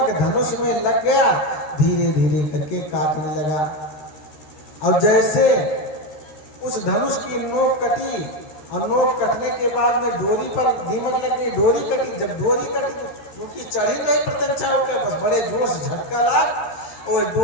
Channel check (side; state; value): right; late; 13 ms